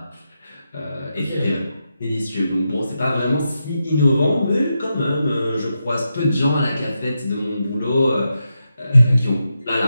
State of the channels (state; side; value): inverted; both; correlation -0.86